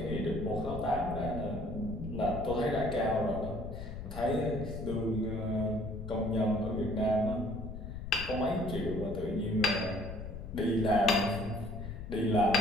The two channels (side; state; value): left; noise; rumble, 8 dB below the sound